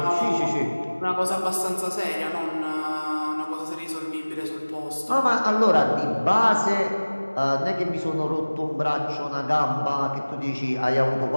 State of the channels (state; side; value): inverted; both; correlation -1.00